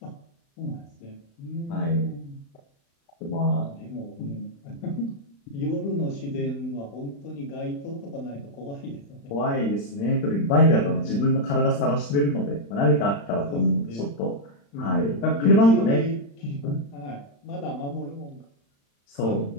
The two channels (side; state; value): right; late; 35 ms